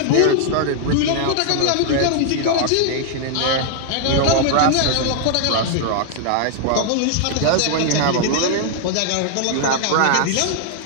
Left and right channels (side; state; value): both; different; correlation 0.00